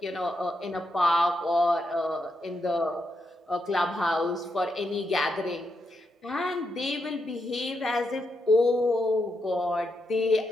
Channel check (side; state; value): both; normal; correlation 0.83